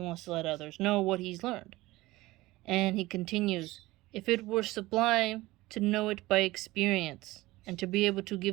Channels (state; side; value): quieter; left; 19.1 dB